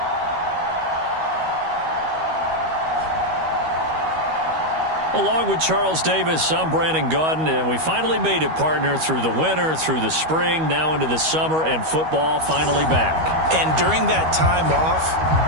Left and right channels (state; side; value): late; left; 13 ms